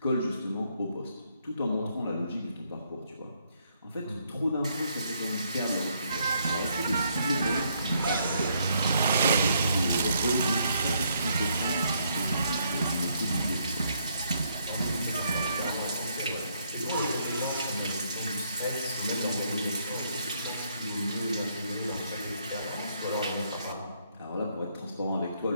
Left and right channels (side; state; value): both; inverted; correlation -0.72